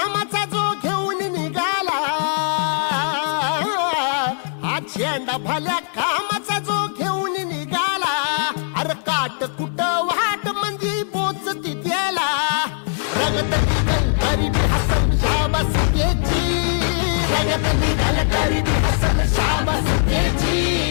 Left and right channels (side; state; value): right; silent; 63 dB below the other